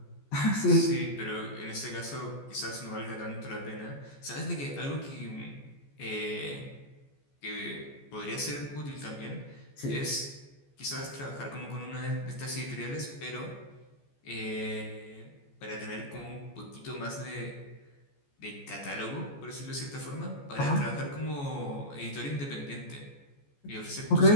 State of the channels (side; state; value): right; late; 14 ms